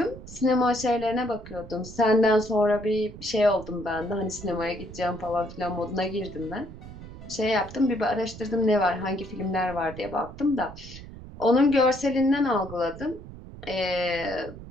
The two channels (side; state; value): right; noise; rumble, 14 dB below the sound